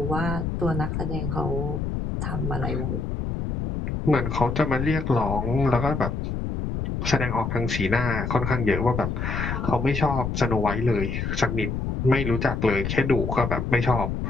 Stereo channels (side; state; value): left; noise; rumble, 2 dB below the sound